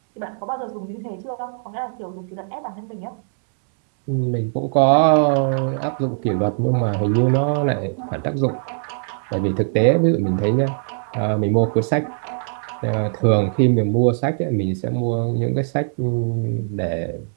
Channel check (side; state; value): left; silent; digital silence